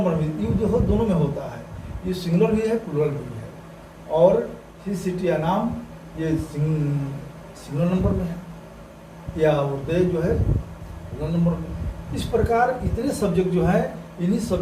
में यू जो हो दोनों में होता है। ये सिंगुलर भी है, प्लूरल भी है। और ही, सिटी या नाम ये सिंगुलर नंबर में है, या दे जो है प्लूरल नंबर में। इस प्रकार इतने सब्जेक्ट जो है, इन्हीं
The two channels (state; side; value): identical; both; correlation 1.00